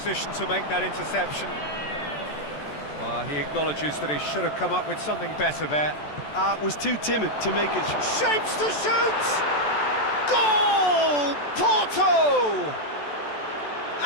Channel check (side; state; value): right; late; 14 ms